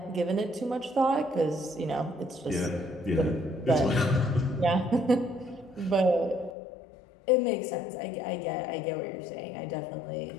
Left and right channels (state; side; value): drops out; right; at 6.6 s